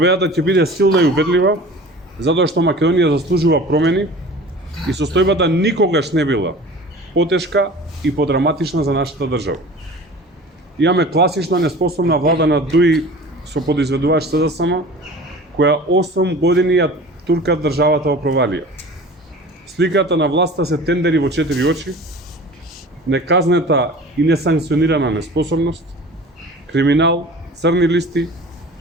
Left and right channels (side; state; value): both; normal; correlation 0.40